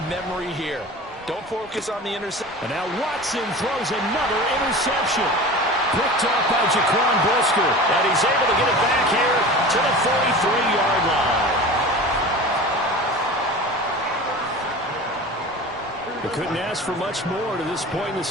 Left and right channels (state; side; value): normal; both; correlation 0.35